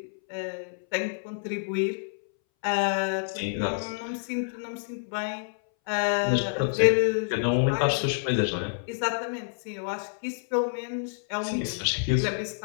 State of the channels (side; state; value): right; silent; 59 dB below the other